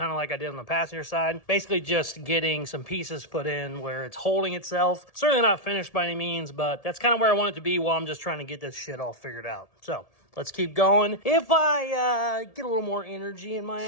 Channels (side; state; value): right; late; 1.7 ms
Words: of like I did on the passenger side. Basically just getting some pieces put in where it's holding itself. Certainly not finished by any means, but that's kind of where I want it to be while I'm just trying to get this shit all figured out. So let's keep going. If I get a little more energy in my